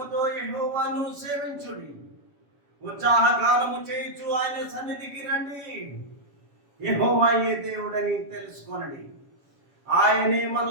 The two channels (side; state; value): left; late; 7.2 ms